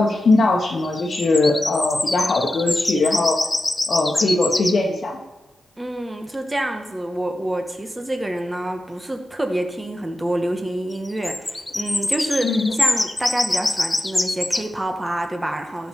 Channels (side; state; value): both; normal; correlation 0.92